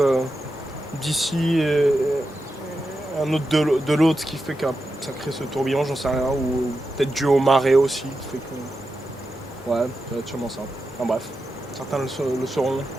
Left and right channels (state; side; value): normal; both; correlation 0.89